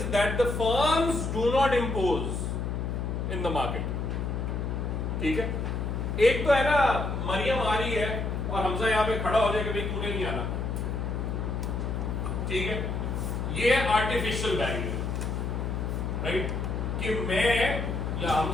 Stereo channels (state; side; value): noise; left; hum, 2 dB below the sound